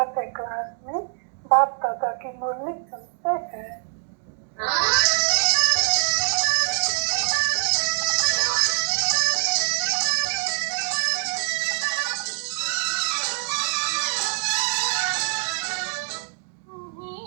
क्लास में बाप दादा की मुरली सुनते हैं।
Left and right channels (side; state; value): left; silent; digital silence